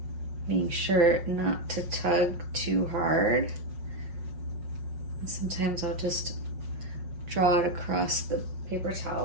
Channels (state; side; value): late; left; 5.5 ms